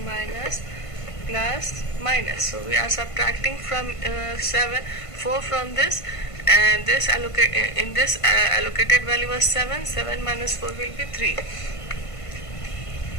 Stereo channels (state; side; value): late; right; 1.5 ms